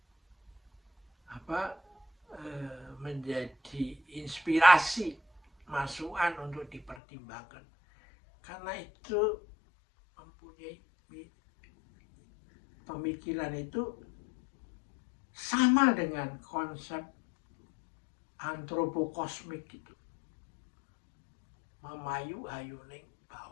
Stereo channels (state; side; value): drops out; right; at 7.0 s